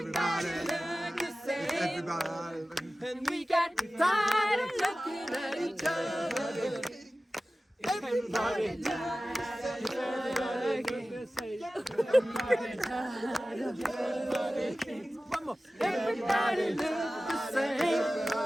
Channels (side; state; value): both; normal; correlation 0.96